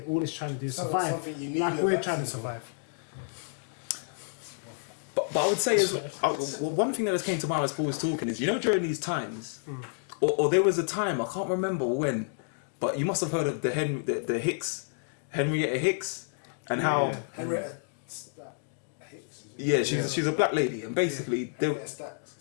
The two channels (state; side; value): silent; right; digital silence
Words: all it's trying to do is So- survive. something you need Like a we're vaccine trying to for. survive. But I would say is one thing that just came to mind as Paul was talking is, you know, during these times, or there was a time, I can't remember when, but you must have heard of the Henrietta Hicks, and how Henrietta Hicks. yeah, she's a black lady, and basically there, Henrietta Stacks.